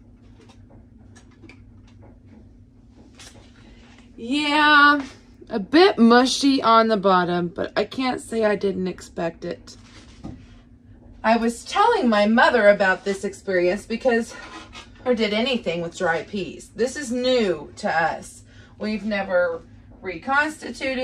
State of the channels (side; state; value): both; identical; correlation 1.00